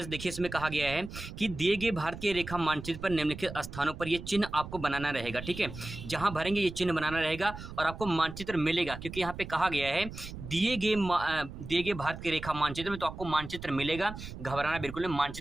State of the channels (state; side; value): noise; right; rumble, 11 dB below the sound